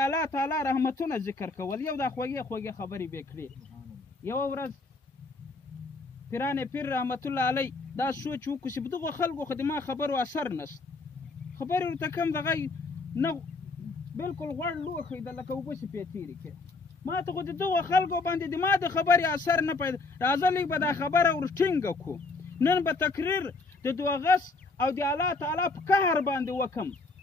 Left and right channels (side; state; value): right; quieter; 3.6 dB